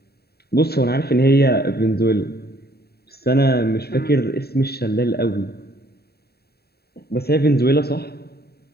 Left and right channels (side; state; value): right; late; 0.46 ms